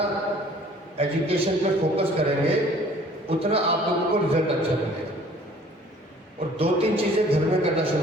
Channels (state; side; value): normal; both; correlation 0.53